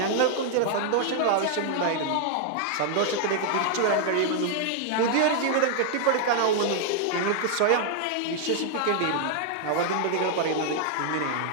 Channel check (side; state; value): both; different; correlation 0.00